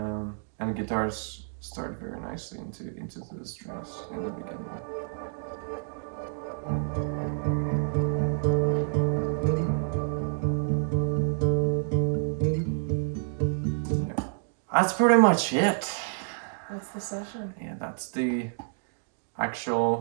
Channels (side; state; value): left; silent; digital silence